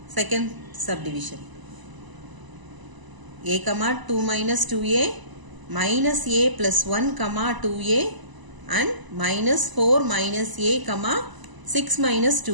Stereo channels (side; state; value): left; late; 1.0 ms